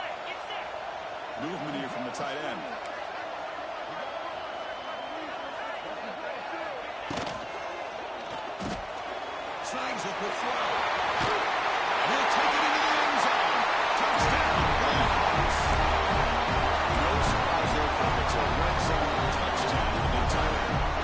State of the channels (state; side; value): identical; both; correlation 1.00